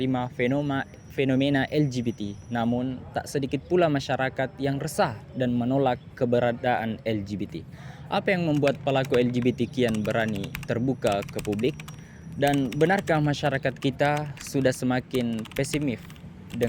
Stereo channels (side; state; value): both; identical; correlation 1.00